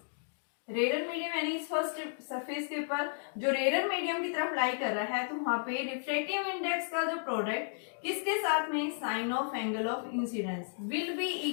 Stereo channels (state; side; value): silent; right; digital silence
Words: rare medium यानी इस फर्स्ट सरफेस के ऊपर जो रेयर मीडियम की तरफ लाई कर रहा है, तो वहां पे रिफ्रैक्टिव इंडेक्स का जो प्रोडक्ट किसके साथ में, sine of angle of incidence will be